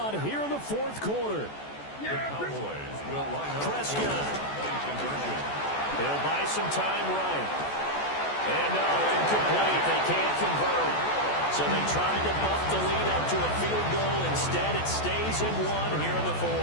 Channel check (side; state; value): right; late; 14 ms